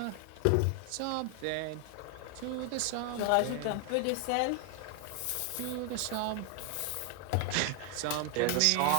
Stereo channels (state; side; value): different; both; correlation 0.00